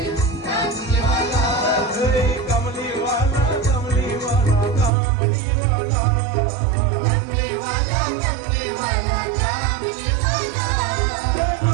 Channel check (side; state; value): left; drops out; at 4.9 s